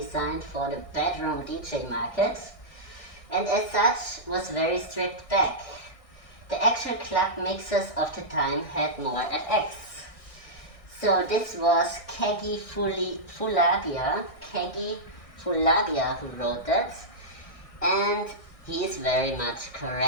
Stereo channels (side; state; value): right; late; 1.6 ms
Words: for the bedroom DJ market, and as such was very stripped back. The actual club mixers of the time had more FX. So this was Kegi Fulabia who wrote that, and he is very much